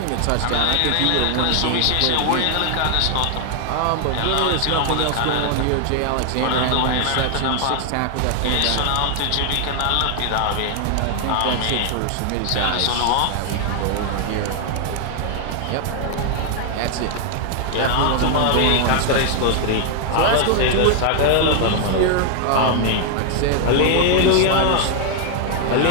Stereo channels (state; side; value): different; both; correlation 0.00